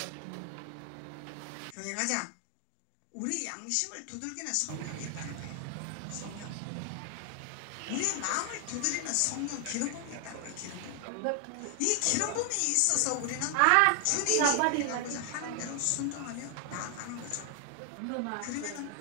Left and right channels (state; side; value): different; both; correlation 0.00